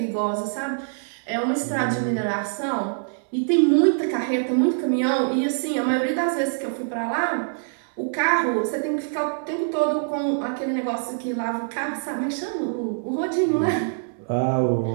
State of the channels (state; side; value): silent; left; digital silence